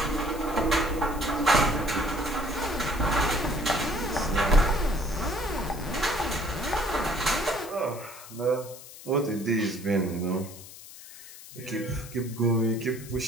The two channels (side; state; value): left; noise; hiss, 16 dB below the sound